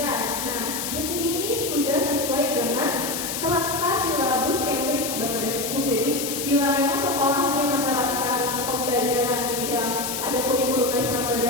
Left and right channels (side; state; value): left; noise; hiss, 4 dB below the sound